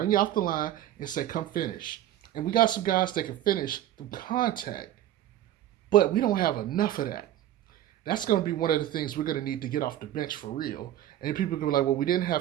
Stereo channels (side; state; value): left; quieter; 12.5 dB